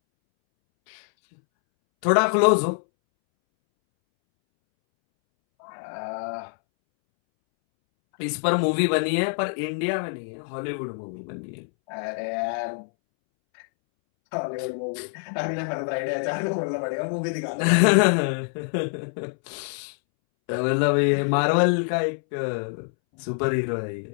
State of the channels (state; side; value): silent; right; 62 dB below the other